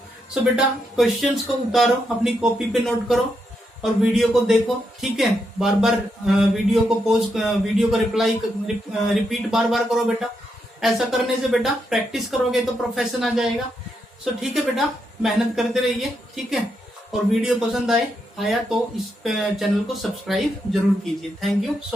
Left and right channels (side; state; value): both; normal; correlation 0.81